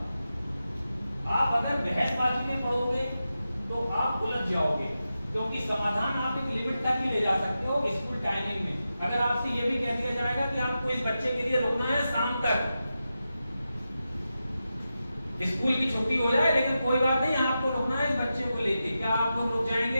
आप अगर बहसबाजी में पड़ोगे तो आप उलझ जाओगे, क्योंकि समाधान आप एक लिमिट तक ही ले जा सकते हो स्कूल टाइमिंग में। अगर आपसे ये भी कह दिया जाएगा कि आपको इस बच्चे के लिए रुकना है शाम तक, स्कूल की छुट्टी हो जाए लेकिन कोई बात नहीं आपको रुकना है इस बच्चे को लेके, क्या आप लोग रुक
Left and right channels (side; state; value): both; inverted; correlation -0.90